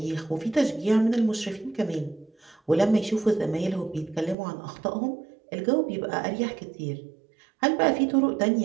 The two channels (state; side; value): drops out; left; at 4.4 s